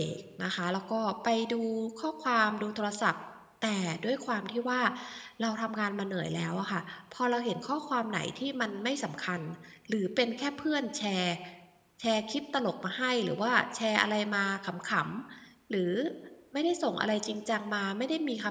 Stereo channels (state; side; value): identical; both; correlation 1.00